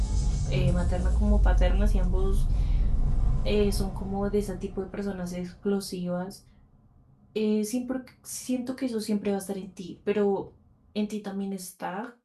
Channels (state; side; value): identical; both; correlation 1.00